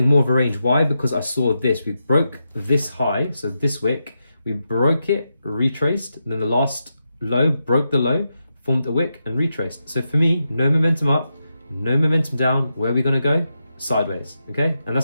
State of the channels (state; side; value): inverted; both; correlation -0.87